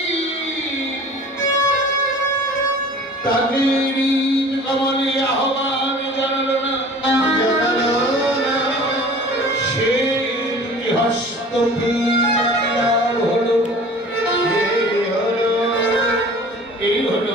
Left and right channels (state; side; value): normal; both; correlation 0.44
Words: তাকে কমলে আহ্বান জানাল না, সে হস্ত হলো। এই